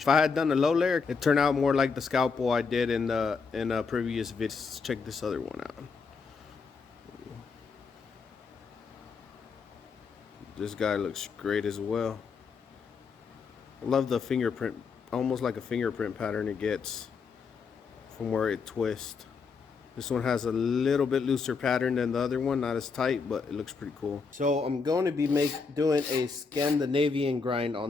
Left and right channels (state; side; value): quieter; right; 5.1 dB